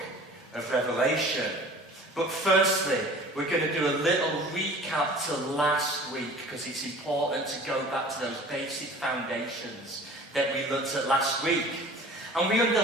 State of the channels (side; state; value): both; normal; correlation 0.45